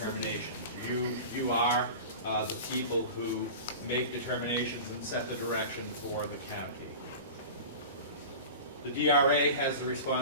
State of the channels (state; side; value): inverted; both; correlation -0.34